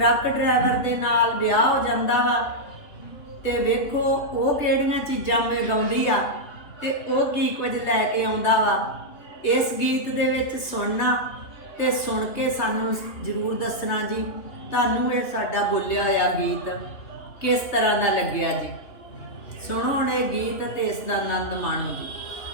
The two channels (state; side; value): late; right; 3.3 ms